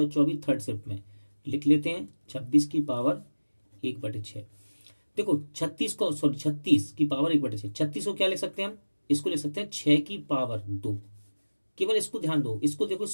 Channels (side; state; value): both; inverted; correlation -1.00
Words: थर्ड शिफ्ट में। लिख लेते हैं 26 की पावर 1/6। देखो 36 की पावर 1/6, 36 को क्या लिख सकते हैं हम, इसको लिख सकते हैं 6 की पावर 2। केवल इसको ध्यान दो, इसको देखो,